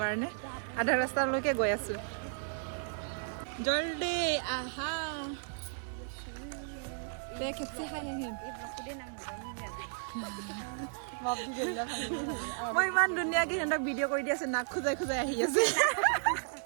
কাৰণে আধা ৰাস্তালৈকে গৈ আছোঁ। জল্দি আহা খেপচি খাই আহিম। মই ইমান ধুনীয়াকে সিহঁতক ভিডিঅ' কৰি দি আছো, নাক খোজাই খোজাই আহি আছে।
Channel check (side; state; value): left; silent; 55 dB below the other